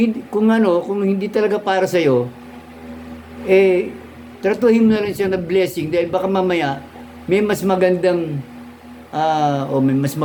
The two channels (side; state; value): both; identical; correlation 1.00